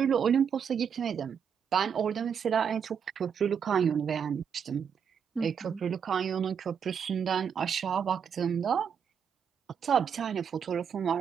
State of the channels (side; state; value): left; quieter; 7.3 dB